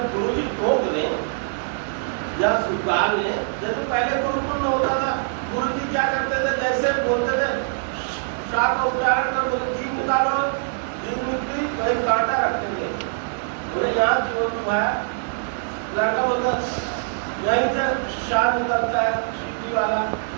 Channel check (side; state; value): left; silent; digital silence